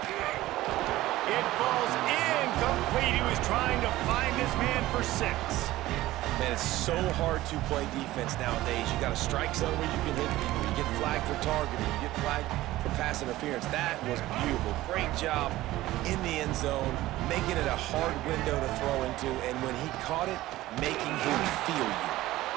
It falls incomplete. He was trying to find his man for 6. Man, it's so hard to play defense nowadays. You got a strike zone where you can hit people. You get flagged for targeting. You get flagged for pass interference. That was beautiful. Great job in the end zone, making it a hard window to throw into, and when he caught it, making him feel you.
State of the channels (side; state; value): left; quieter; 16.5 dB